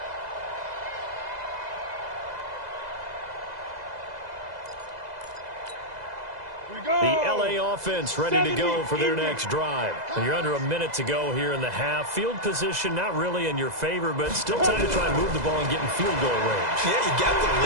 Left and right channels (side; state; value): left; late; 2.0 ms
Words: The LA offense ready to go for their next drive. And you're under a minute to go here in the half. Field position not really in your favor, but still time to try and move the ball and get in field goal range. Yeah, you got the